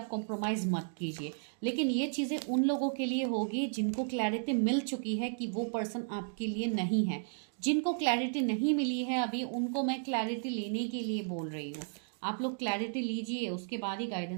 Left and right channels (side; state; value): left; silent; digital silence